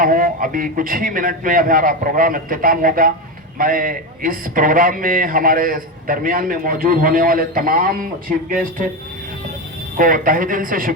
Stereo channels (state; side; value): normal; both; correlation 0.15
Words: ہوں. ابھی کچھ ہی منٹ میں ہمارا پروگرام اختتام ہوگا. میں اس پروگرام میں ہمارے درمیان میں موجود ہونے والے تمام چیف گیسٹ کو تہہ دل سے